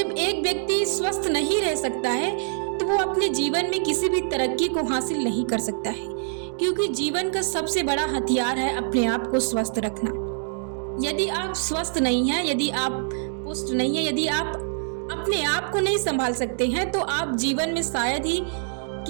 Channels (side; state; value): left; silent; digital silence